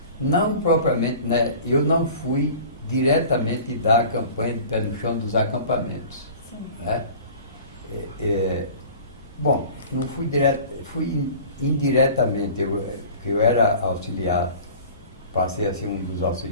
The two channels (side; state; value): both; inverted; correlation -0.43